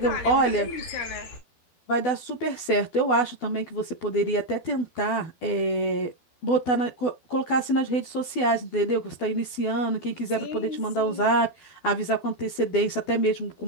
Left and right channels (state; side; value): late; right; 12 ms